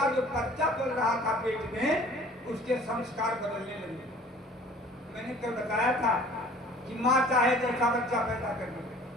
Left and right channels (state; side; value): normal; both; correlation 0.49